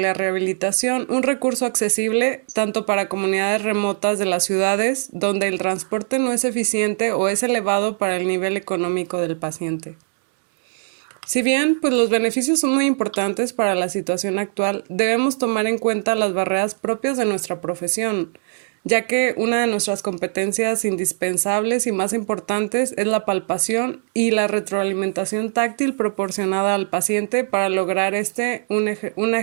un recurso accesible tanto para comunidades remotas de las ciudades donde el transporte no es eficiente o es elevado para el nivel económico del paciente. Si bien pues los beneficios son muy importantes para la situación actual, debemos tomar en cuenta las barreras propias de nuestra profesión, ya que una de nuestras competencias indispensables y más importantes es la palpación y la retroalimentación táctil proporcionada al paciente para lograr una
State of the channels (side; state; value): left; silent; digital silence